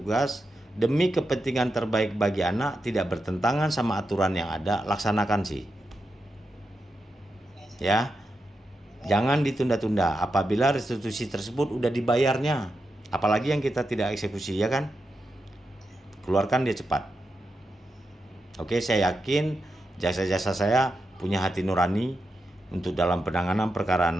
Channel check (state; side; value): normal; both; correlation 0.87